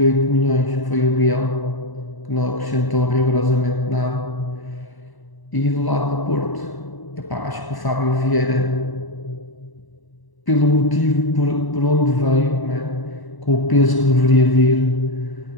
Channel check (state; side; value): late; right; 1.0 ms